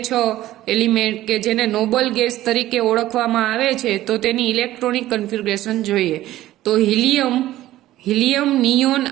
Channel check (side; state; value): left; quieter; 14.9 dB